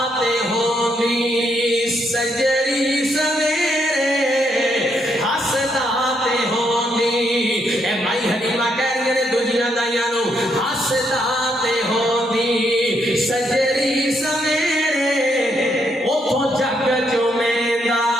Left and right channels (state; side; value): normal; both; correlation 0.75